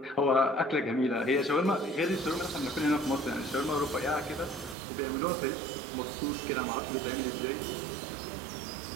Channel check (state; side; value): drops out; left; at 4.8 s